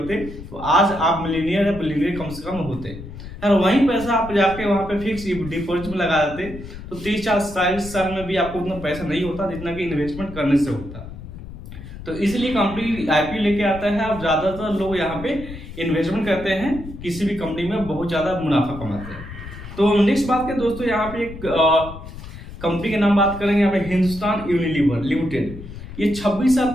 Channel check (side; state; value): left; noise; rumble, 13 dB below the sound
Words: तो आज आप मिलीनियर या बिलीनियर कम से कम होते। और वही पैसा आप जाके वहां पे फिक्स डिपॉजिट में लगा देते तो 30-40 साल में भी आपको उतना पैसा नहीं होता जितना कि इन्वेस्टमेंट करने से होता। तो इसलिए कंपनी आईपीओ लेके आता है और ज्यादातर लोग यहाँ पे इन्वेस्टमेंट करते हैं, किसी भी कंपनी में बहुत ज्यादा मुनाफा कमाते हैं। तो नेक्स्ट बात करें दोस्तों, यहाँ पे एक कंपनी के नाम बात करेंगे, यहाँ पे हिंदुस्तान यूनिलीवर लिमिटेड। ये 26 साल